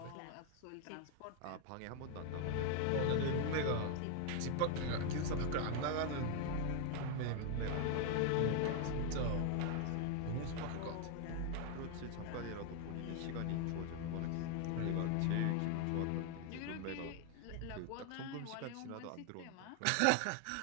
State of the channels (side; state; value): both; different; correlation 0.00